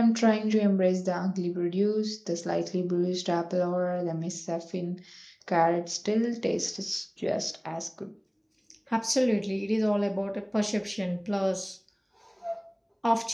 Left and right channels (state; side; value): identical; both; correlation 1.00